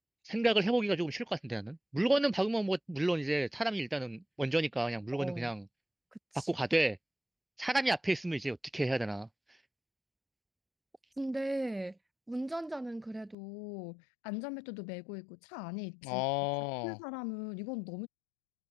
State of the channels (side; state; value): right; drops out; at 13.4 s